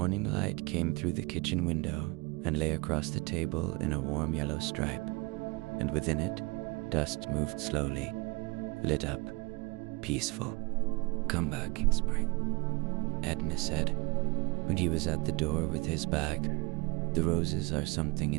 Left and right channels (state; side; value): quieter; left; 25.4 dB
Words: light came through the kitchen window and lay across the table in a warm yellow stripe, and within it, dust moved slowly, lit up, peaceful. "Come back in spring," Edna said, when he was at the door with his bag. "The roses are something